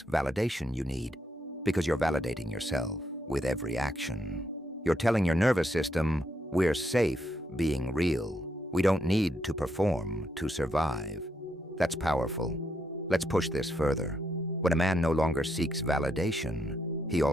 validation you need, because you're validating yourself with every action. You're telling your nervous system, we're safe being real. We don't need to perform to survive. That's powerful. Let's push this further. When a man no longer seeks validation, he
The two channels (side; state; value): both; normal; correlation 0.78